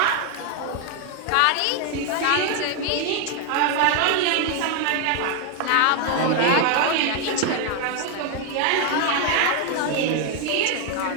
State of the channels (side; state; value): both; different; correlation 0.01